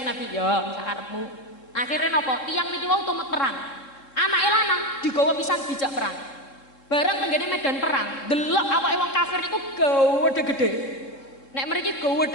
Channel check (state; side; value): late; right; 3.7 ms